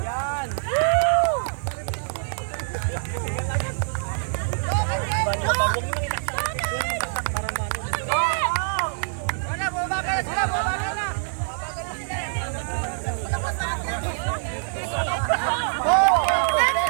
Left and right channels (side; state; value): left; silent; 62 dB below the other